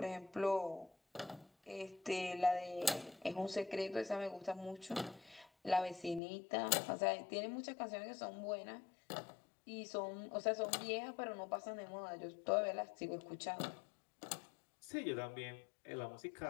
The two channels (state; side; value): drops out; right; at 6.2 s